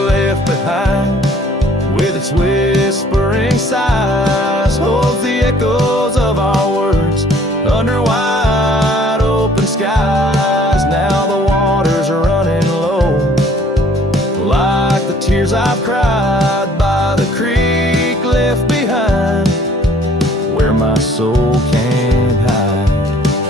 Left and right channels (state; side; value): normal; both; correlation 0.57